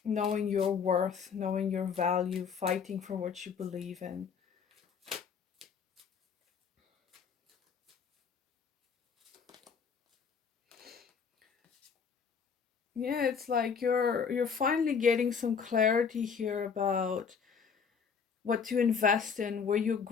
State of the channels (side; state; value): right; quieter; 6.3 dB